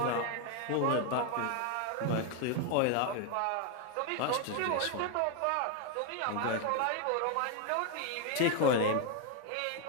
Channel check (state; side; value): different; both; correlation 0.01